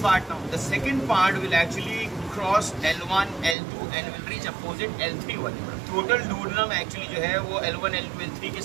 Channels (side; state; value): left; drops out; at 3.6 s